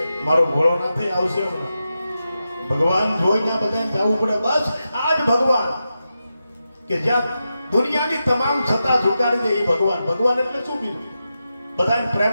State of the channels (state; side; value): inverted; both; correlation -0.90